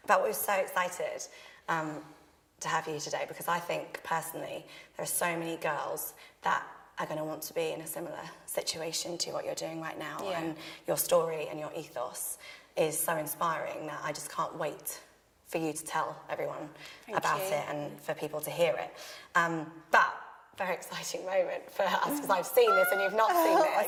But we're so excited to have you today because I think personally there are so many girls that are going to want to be in a similar situation to what you're doing right now, and your story and your ethos is so inspiring that I just can't wait for you to tell everyone about it and for people to hear it. But very exciting moment for us because I've seen this and you've not seen this. Oh my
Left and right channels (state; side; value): identical; both; correlation 1.00